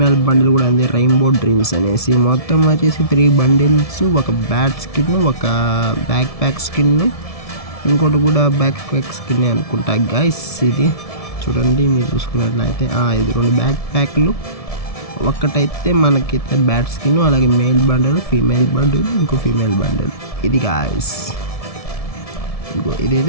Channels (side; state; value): right; late; 1.7 ms